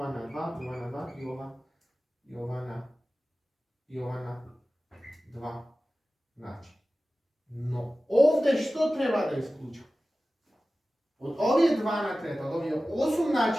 на 2, и ова на 2, и ова на 2 начин. Но овде што треба да исклучам? Од овие 2 на трета, од овие 8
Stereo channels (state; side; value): normal; both; correlation 0.96